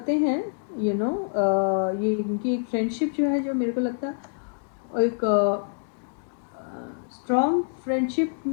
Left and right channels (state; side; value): silent; right; digital silence